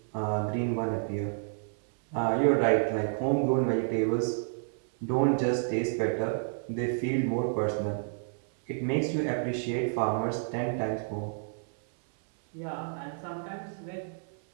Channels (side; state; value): left; silent; 57 dB below the other